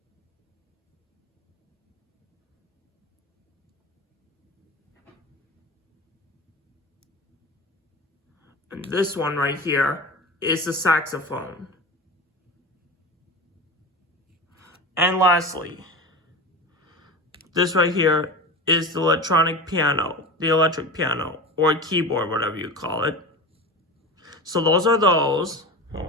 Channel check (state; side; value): normal; both; correlation 0.29